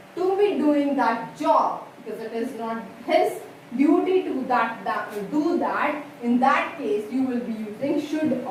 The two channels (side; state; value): both; identical; correlation 1.00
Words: to be doing that job, because it is not his duty to do that, in that case you will be using should or